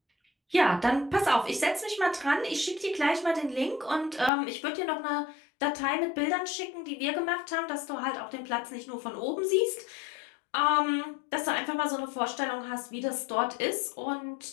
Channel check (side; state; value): right; drops out; at 4.3 s